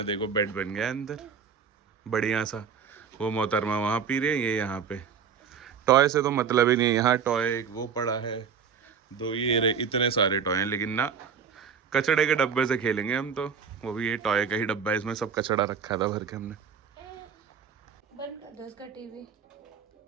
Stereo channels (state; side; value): quieter; left; 6.8 dB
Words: देखो बेड बन गया अंदर बढ़िया सा। वो मोहतरमा वहाँ पी रही है, ये यहाँ पे। टॉय से तो मतलब ही नहीं है। यहाँ टॉय एक वो पड़ा है, 2 ये इतने सारे टॉय हैं, लेकिन ना कचड़े के डब्बे से खेलेंगे हम तो। वो भी ये टॉय का ही डब्बा है, इसमें सब कचड़ा रखा था भर के हमने। बंद कर दो इसका टीवी।